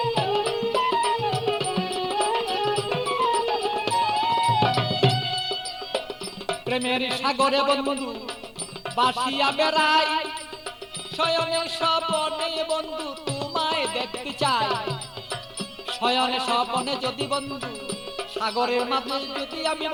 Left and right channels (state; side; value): identical; both; correlation 1.00